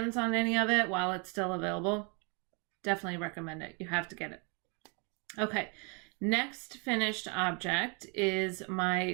on any of it while it's still available, definitely recommend it. You have to get it. Okay, next finished object is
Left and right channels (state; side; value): quieter; left; 34.0 dB